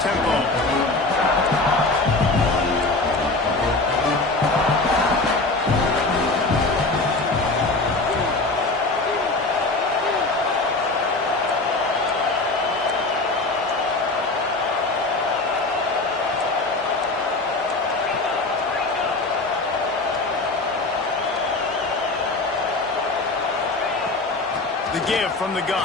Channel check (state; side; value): quieter; right; 3.2 dB